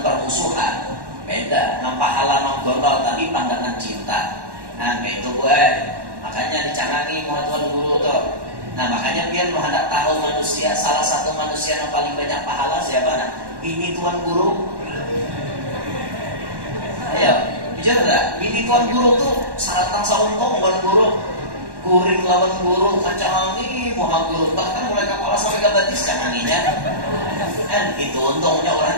Beda, nampak halaman gondol tadi pandangan cinta. Nah kayak itu gue, makanya dicangangi muha tuan guru tuh. Nah makanya pian mau hendak tahu manusia, salah satu manusia yang paling banyak pahala siapa? Nah, bini tuan guru. Ayo, bicara enggak? Bini tuan guru tuh saratang sauntung buat guru. Guring lawan guru, kacangangi muha guru, bahkan mulai kepala sampai ke batis canganginya. Kan itu untungnya orang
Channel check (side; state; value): left; late; 1.1 ms